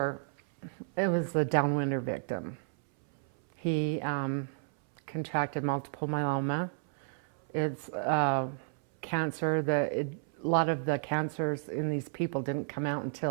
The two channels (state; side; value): silent; left; 56 dB below the other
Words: it was a Downwinder victim. He contracted multiple myeloma. It's cancer that a lot of the cancers in these people didn't come out